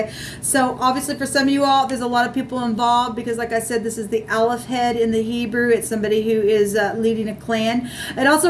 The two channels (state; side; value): identical; both; correlation 1.00